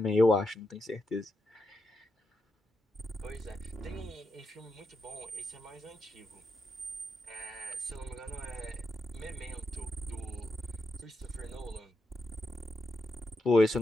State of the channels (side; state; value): both; normal; correlation 0.85